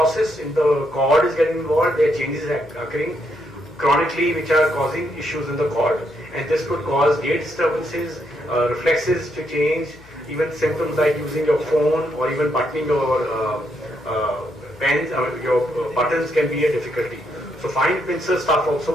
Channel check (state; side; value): noise; left; hum, 24 dB below the sound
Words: In the cord is getting involved, there are changes occurring chronically which are causing issues in the cord, and this could cause gait disturbances, reflexes to change, even symptoms like using your phone or even buttoning your pens, your buttons can be a difficulty. So fine pincer stuff